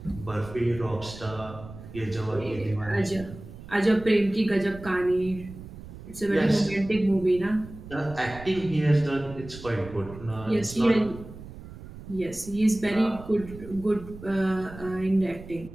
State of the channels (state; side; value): noise; right; rumble, 15 dB below the sound